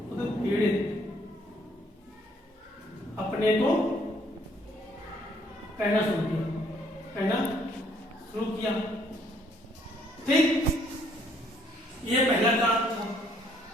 अपने को कहना शुरू किया। ठीक, ये पहला कारण था।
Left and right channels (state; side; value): normal; both; correlation 0.65